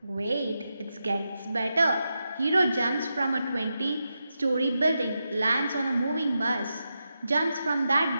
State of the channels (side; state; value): both; inverted; correlation -0.88